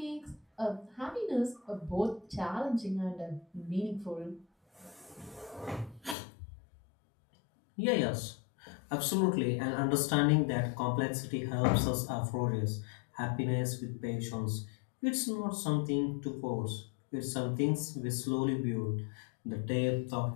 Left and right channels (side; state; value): right; drops out; at 6.2 s